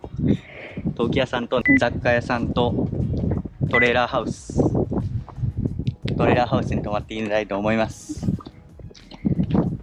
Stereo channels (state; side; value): identical; both; correlation 1.00